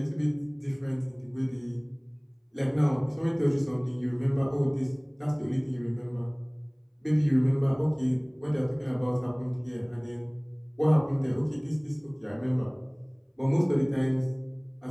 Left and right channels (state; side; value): identical; both; correlation 1.00